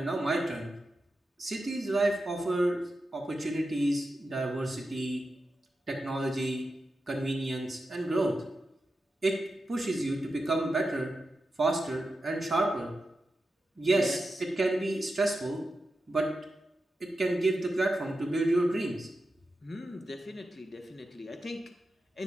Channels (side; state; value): both; normal; correlation 0.90